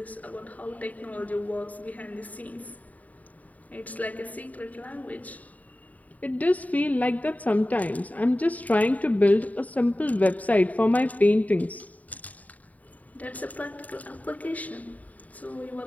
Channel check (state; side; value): late; right; 0.073 ms